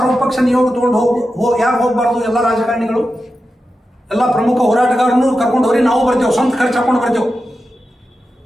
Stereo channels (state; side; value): normal; both; correlation 0.91